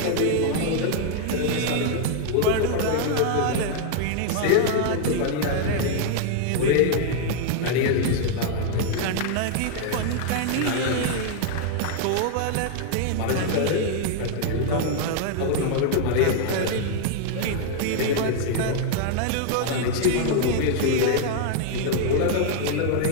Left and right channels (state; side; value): different; both; correlation 0.00